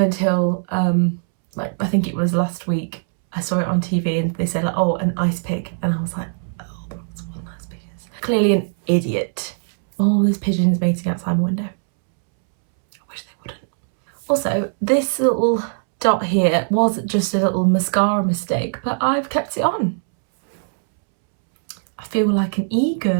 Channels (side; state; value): left; silent; 65 dB below the other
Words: until, I think it was last week, I saw it on TV and they said, oh, an ice pick. And I was like, oh, that's what an ice pick is. Clearly an idiot. All those pigeons mating outside my window. I wish they wouldn't. Also, this little dot here was just a little mascara mistake, but I've kept it on. I feel like an